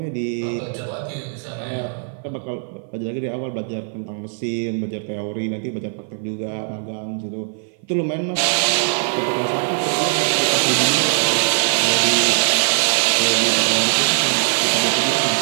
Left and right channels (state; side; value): silent; left; 56 dB below the other